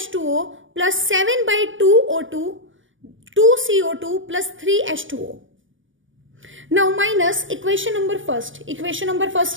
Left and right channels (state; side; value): late; left; 0.56 ms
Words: plus 7 by 2O2, 2CO2 plus 3H2O. Now minus equation number 1. Equation number 1